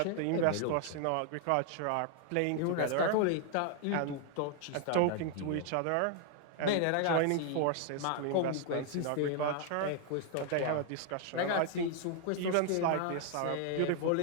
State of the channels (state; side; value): different; both; correlation 0.00